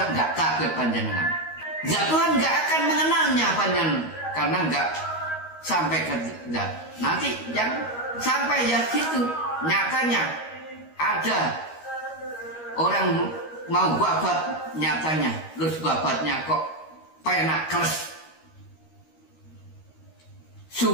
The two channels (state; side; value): late; right; 13 ms